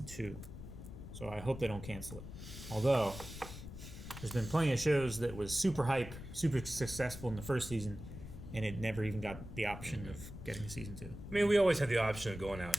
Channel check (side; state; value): left; noise; rumble, 11 dB below the sound